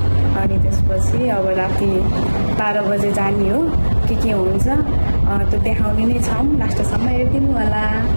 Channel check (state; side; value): inverted; both; correlation -1.00